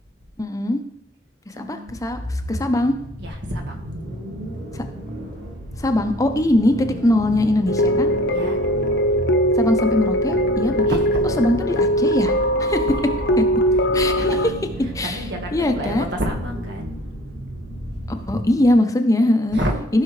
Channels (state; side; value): normal; both; correlation 0.49